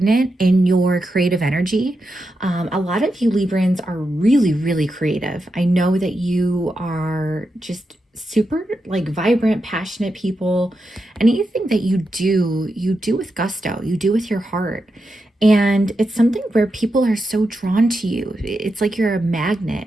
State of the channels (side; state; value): both; normal; correlation 0.87